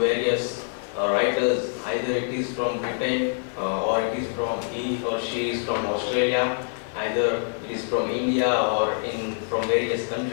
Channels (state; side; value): silent; right; digital silence